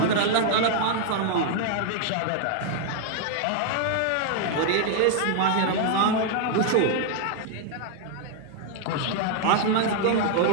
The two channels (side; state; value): both; different; correlation 0.00